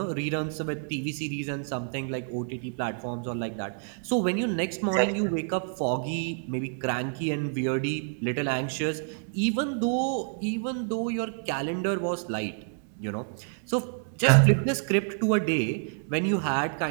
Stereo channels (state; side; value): silent; left; 59 dB below the other